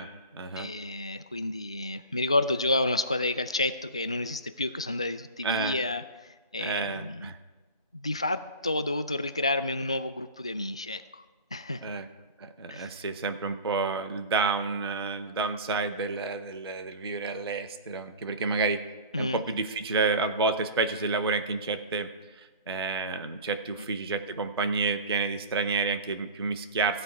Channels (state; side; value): inverted; both; correlation -0.35